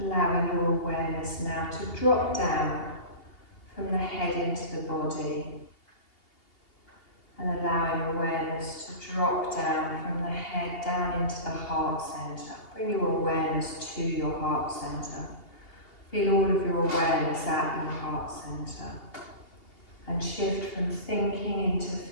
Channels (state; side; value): late; right; 2.8 ms